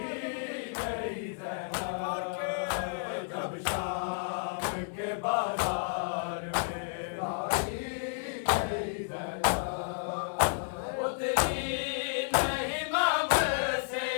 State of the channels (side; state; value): right; silent; digital silence